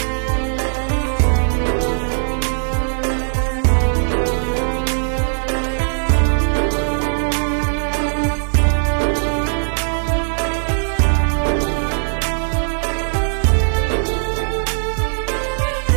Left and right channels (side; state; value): left; silent; 60 dB below the other